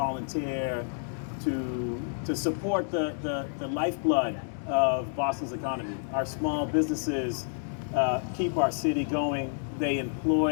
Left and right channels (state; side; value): silent; right; digital silence